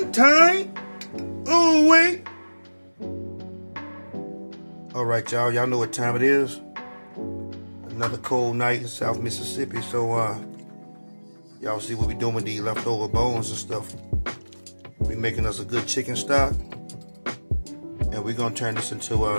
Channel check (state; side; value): inverted; both; correlation -1.00